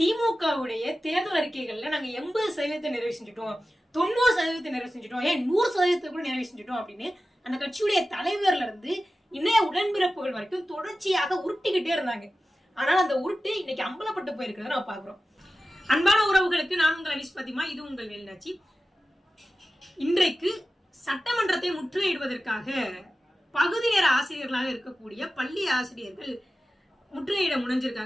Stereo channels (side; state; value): both; normal; correlation 0.94